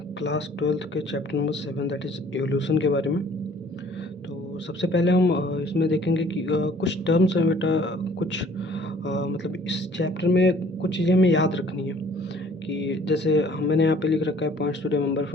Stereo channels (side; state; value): both; normal; correlation 0.55